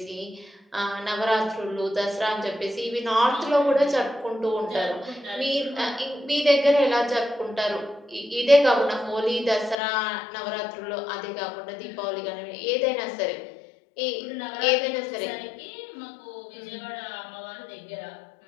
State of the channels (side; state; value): right; drops out; at 9.8 s